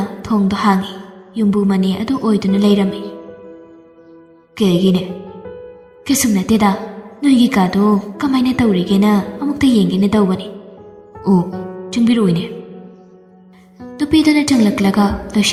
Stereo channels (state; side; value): identical; both; correlation 1.00